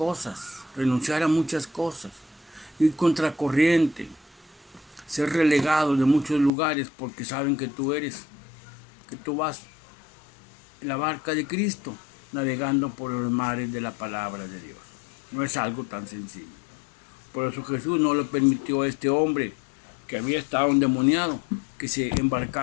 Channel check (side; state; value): right; drops out; at 6.5 s